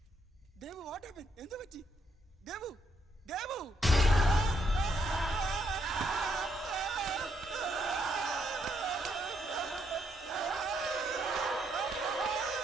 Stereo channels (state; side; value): normal; both; correlation 0.75